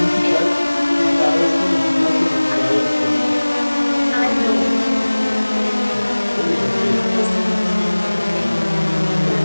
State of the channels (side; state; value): both; inverted; correlation -1.00